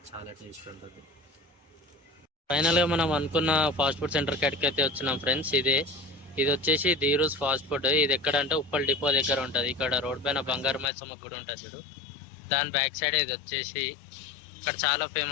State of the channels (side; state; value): right; drops out; at 10.9 s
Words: చాలా టేస్ట్ ఉంటుంది. ఫైనల్గా మనం అనుకున్న ఫాస్ట్ ఫుడ్ సెంటర్ కాడికి అయితే వచ్చినాం ఫ్రెండ్స్. ఇది వచ్చేసి ధీరూస్ ఫాస్ట్ ఫుడ్. ఇది ఎక్కడంటే ఉప్పల్ డిపో దగ్గర ఉంటుంది. ఇక్కడ రోడ్ పైన బంగారు మైసమ్మ గుడి ఉంటుంది చూడు, దాని బ్యాక్ సైడ్ ఇది వచ్చేసి. ఇక్కడ చాలా